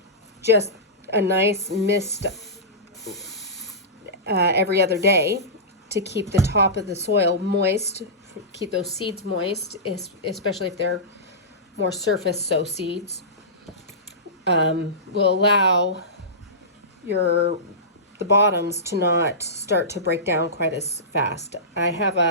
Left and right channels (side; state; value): both; normal; correlation -0.18